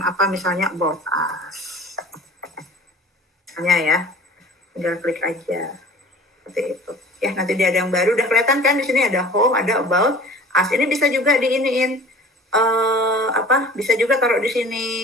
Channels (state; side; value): normal; both; correlation 0.44